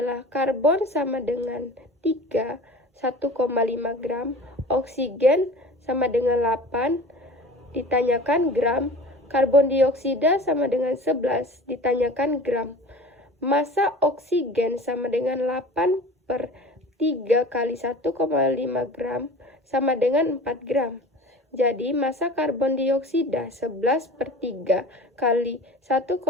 karbon sama dengan 3, 1,5 gram, oksigen sama dengan 8, ditanyakan gram, karbon dioksida sama dengan 11, ditanyakan gram. Massa oksigen sama dengan 8/3 kali 1,5 gram sama dengan 4 gram. Jadi, massa karbon dioksida 11/3 kali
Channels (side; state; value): both; normal; correlation 0.39